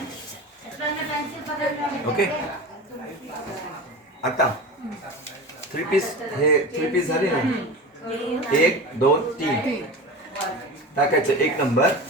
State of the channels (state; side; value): normal; both; correlation 0.30